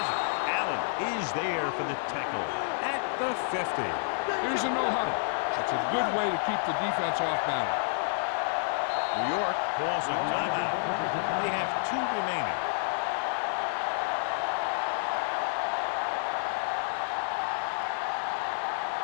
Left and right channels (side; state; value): right; silent; digital silence